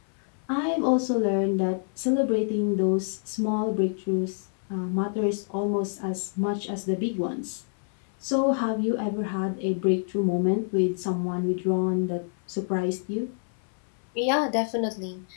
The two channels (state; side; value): silent; right; 59 dB below the other